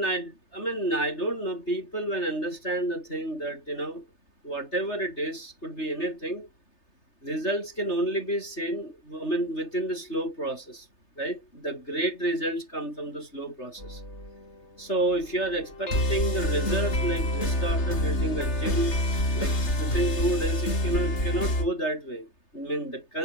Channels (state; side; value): late; right; 3.3 ms